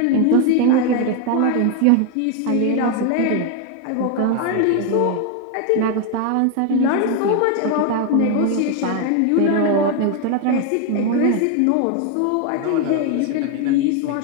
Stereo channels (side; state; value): both; different; correlation 0.01